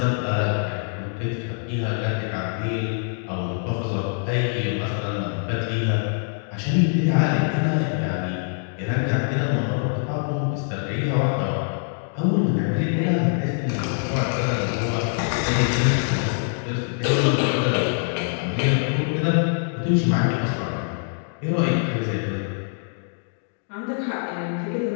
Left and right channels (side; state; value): right; silent; 60 dB below the other